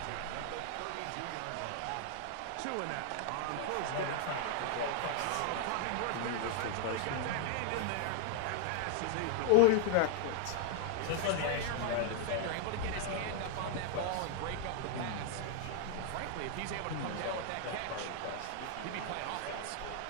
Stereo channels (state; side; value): different; both; correlation 0.00